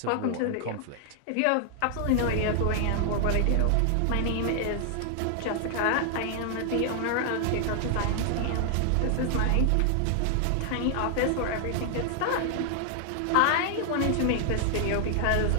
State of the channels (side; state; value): both; different; correlation 0.00